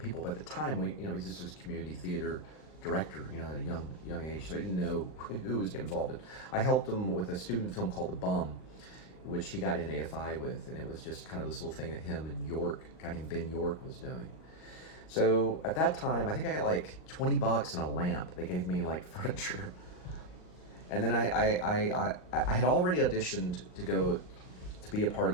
But at the time, he's just this community theater director, you know, at a young age. So I didn't know who was getting involved in. I helped him with a student film called The Bum, which he got in AFI with, and it was just kind of this little thing that him and York, a guy named Ben York, was doing. So at that time, I think I got like $20 and a lamp. They gave me like furniture. And then I had already auditioned to be a part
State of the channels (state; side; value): late; right; 39 ms